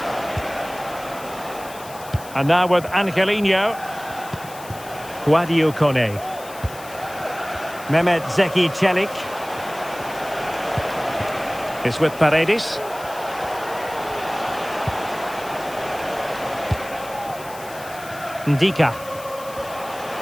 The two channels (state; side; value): noise; left; hiss, 17 dB below the sound